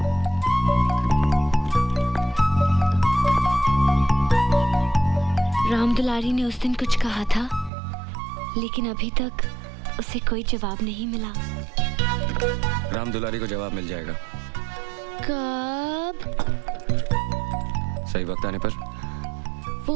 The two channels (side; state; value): left; drops out; at 7.7 s